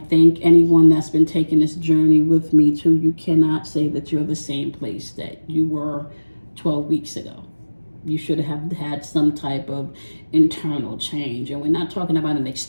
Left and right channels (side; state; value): both; inverted; correlation -1.00